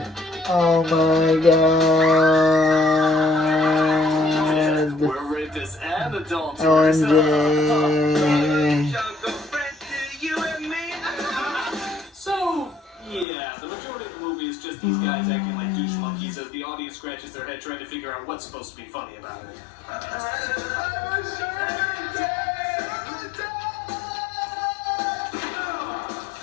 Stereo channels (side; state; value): right; drops out; at 13.2 s